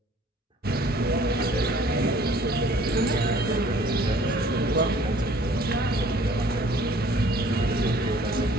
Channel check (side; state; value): both; normal; correlation 0.55